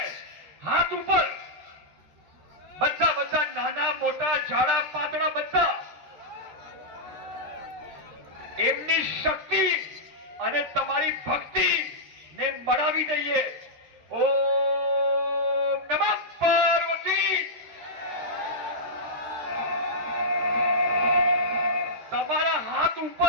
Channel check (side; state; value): left; late; 13 ms